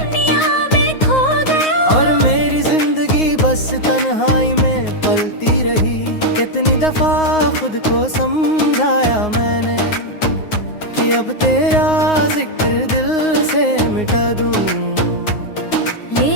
में खो गया। और मेरी जिंदगी बस तन्हाई में पलती रही। कितनी दफा खुद को समझाया मैंने कि अब तेरा जिक्र दिल से मिटा दूं।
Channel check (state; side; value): late; right; 9.6 ms